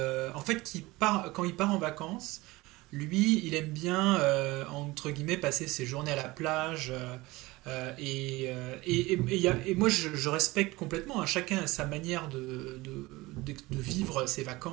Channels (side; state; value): left; quieter; 20.8 dB